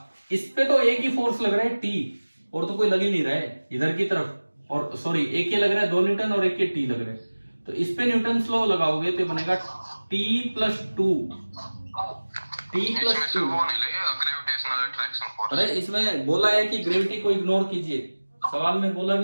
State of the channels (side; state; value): both; inverted; correlation -1.00